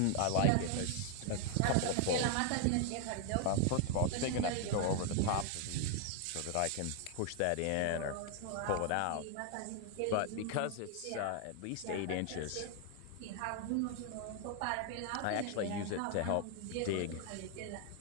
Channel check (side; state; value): both; different; correlation 0.00